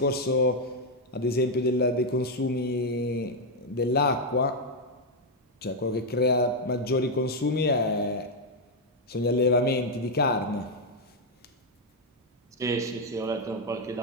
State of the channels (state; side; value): normal; both; correlation 0.02